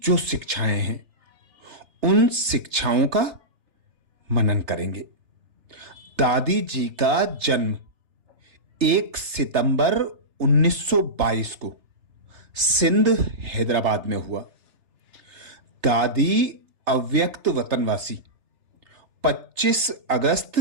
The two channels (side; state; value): left; late; 3.4 ms